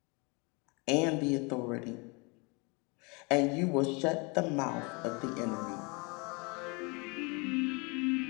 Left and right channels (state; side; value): quieter; right; 30.2 dB